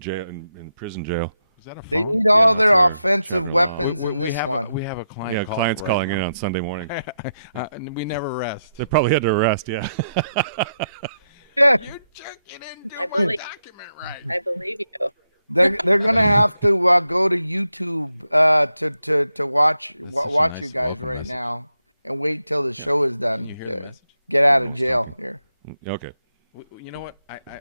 in prison jail. Is that a They phone? need all their Yeah, offensive Trevor weapons We in this have one. we have a client. Yeah, clients right calling now. in on Sunday morning. We never rest. They probably had to arrest. Yeah. Yeah, I believe, I believe you. they're gonna have to go to YouTube to watch such a watch nice you guys welcome right message. now and wait till the show is done. You hear the to message? get out of jail here. Okay. You know what?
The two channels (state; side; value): inverted; both; correlation -0.85